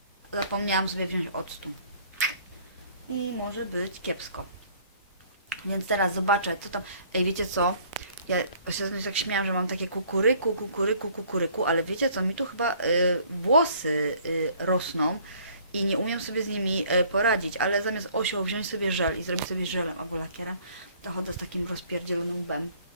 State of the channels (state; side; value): inverted; both; correlation -0.57